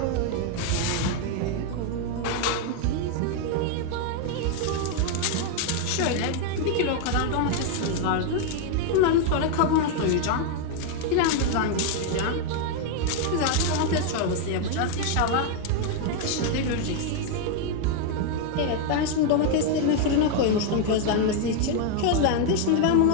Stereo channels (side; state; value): both; different; correlation 0.00